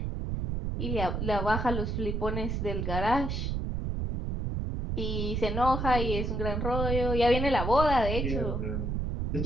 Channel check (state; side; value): noise; right; rumble, 1 dB below the sound